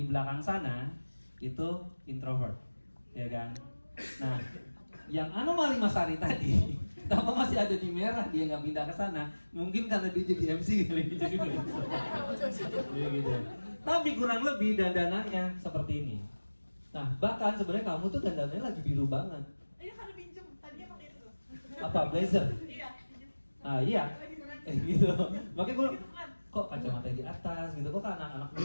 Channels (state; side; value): inverted; both; correlation -1.00